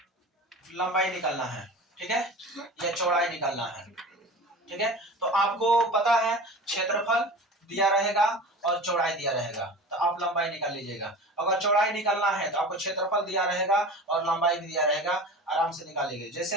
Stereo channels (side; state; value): both; normal; correlation 0.35